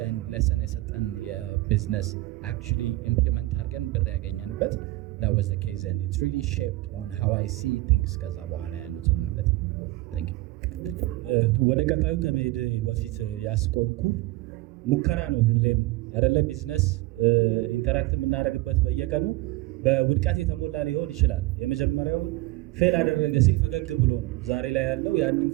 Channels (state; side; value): quieter; left; 19.0 dB